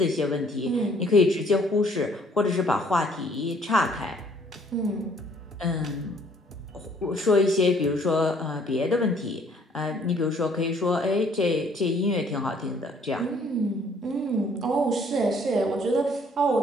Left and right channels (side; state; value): both; normal; correlation 0.61